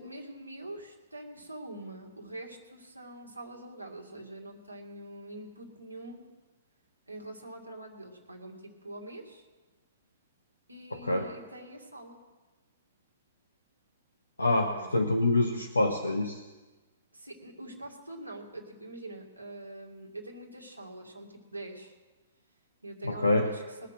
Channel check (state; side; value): inverted; both; correlation -0.79